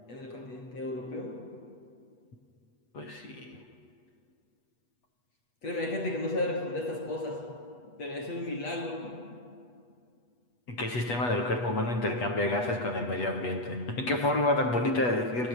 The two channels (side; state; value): right; late; 8.2 ms